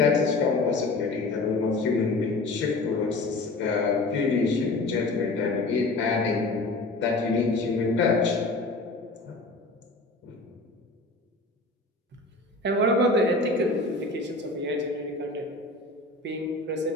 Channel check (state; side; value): quieter; right; 3.1 dB